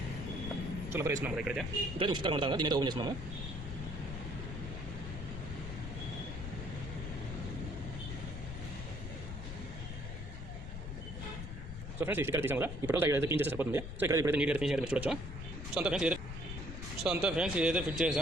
కొత్త రబ్బర్ వేసుకున్నాం కదా ఇక్కడైతే ఉచితంగా ఉంటాం కదా, దీని అయితే ఓపెన్ చేస్తున్నాము. సో ఫ్రెండ్స్ ఇక్కడ తీసాం కదా, ఇప్పుడు అయితే క్లీన్ చేస్తే సరిపోతుంది. సో ఇక్కడ ఇప్పుడైతే నీట్గా ఫినిషింగ్ అయితే మీరు చూడొచ్చు. సో అంతా ఫ్రెండ్స్ ఇదైతే ఫిట్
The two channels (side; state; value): left; noise; rumble, 7 dB below the sound